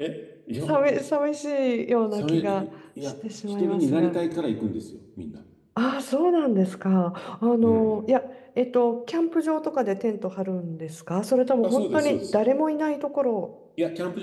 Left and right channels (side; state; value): both; identical; correlation 1.00